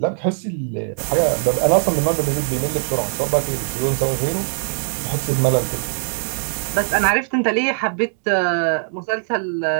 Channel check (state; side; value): silent; left; 65 dB below the other